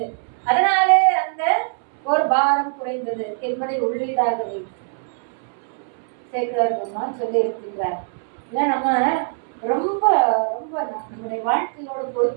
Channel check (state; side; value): silent; left; 64 dB below the other